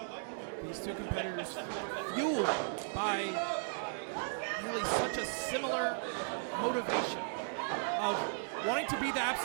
These two competitors fueled by really such a similar motivation of wanting to be the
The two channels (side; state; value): left; silent; digital silence